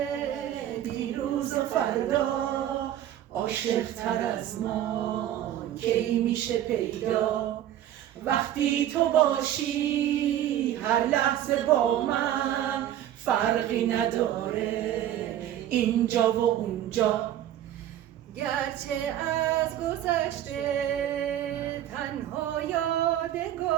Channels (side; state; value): left; quieter; 11.8 dB